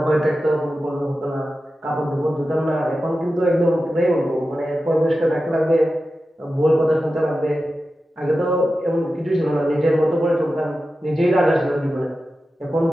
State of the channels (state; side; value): normal; both; correlation 0.93